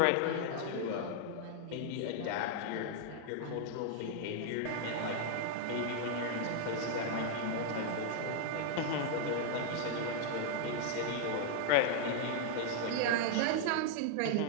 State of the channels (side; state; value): both; different; correlation -0.01